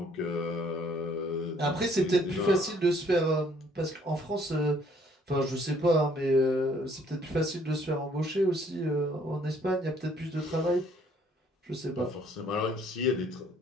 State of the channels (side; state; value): both; normal; correlation 0.62